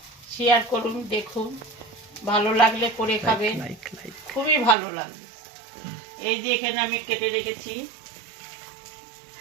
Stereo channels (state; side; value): drops out; left; at 4.8 s